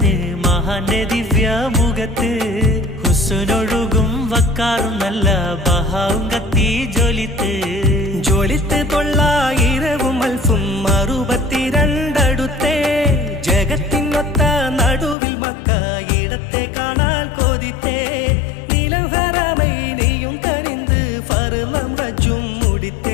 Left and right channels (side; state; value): right; drops out; at 15.2 s